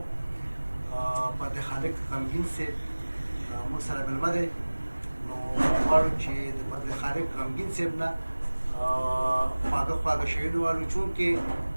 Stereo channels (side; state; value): both; inverted; correlation -1.00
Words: فتح خالق غمګین صاحب موږ سره مېلمه دی. نو موږ غواړو چې د فتح خالق غمګین صاحب نه خواږه خواږه شعرونه واورو، چونکې